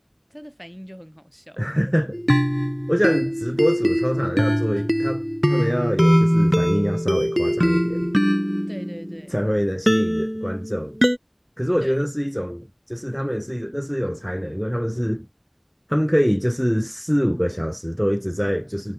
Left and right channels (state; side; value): identical; both; correlation 1.00